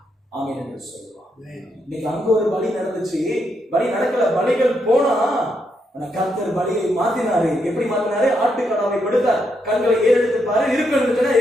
ஆமென் என்று சொல்லுவார். இன்னைக்கு அங்க ஒரு பலி நடந்துச்சு, பலி நடக்கல, பலிகள் போனா கர்த்தர் பலியை மாத்தினாரு. எப்படி மாத்தினாரு? ஆட்டுக்கடாவை கொடுத்தார். கண்களை ஏறெடுத்து பாரு, இருக்குன்னு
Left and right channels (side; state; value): both; normal; correlation 0.79